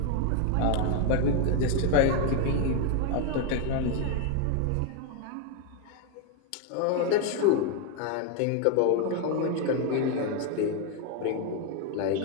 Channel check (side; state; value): both; different; correlation 0.01